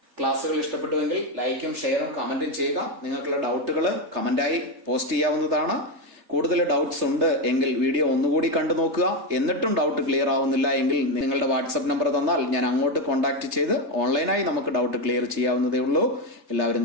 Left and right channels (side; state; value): left; late; 3.3 ms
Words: ക്ലാസ്സുകൾ ഇഷ്ടപ്പെട്ടുവെങ്കിൽ ലൈക്കും ഷെയറും കമന്റും ചെയ്യുക. നിങ്ങൾക്കുള്ള ഡൗട്ടുകൾ കമന്റായി പോസ്റ്റ് ചെയ്യാവുന്നതാണ്. കൂടുതൽ ഡൗട്ട്സ് ഉണ്ട് എങ്കിൽ വീഡിയോ ഒന്നുകൂടി കണ്ടു നോക്കുക. എന്നിട്ടും ഡൗട്ട് ക്ലിയർ ആവുന്നില്ല എങ്കിൽ നിങ്ങളുടെ വാട്സ്ആപ്പ് നമ്പർ തന്നാൽ ഞാൻ അങ്ങോട്ട് കോൺടാക്ട് ചെയ്ത് ഓൺലൈനായി നമുക്ക് ഡൗട്ട് ക്ലിയർ ചെയ്യാവുന്നതേ ഉള്ളൂ.